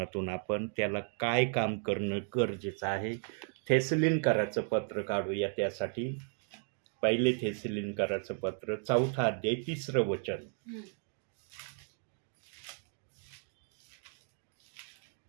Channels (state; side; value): silent; left; 55 dB below the other